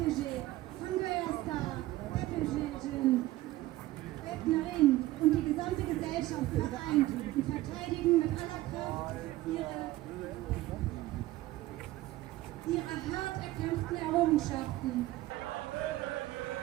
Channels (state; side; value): quieter; left; 16.8 dB